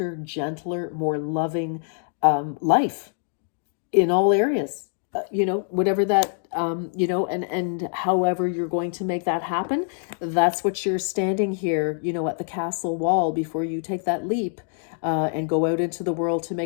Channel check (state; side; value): silent; right; 59 dB below the other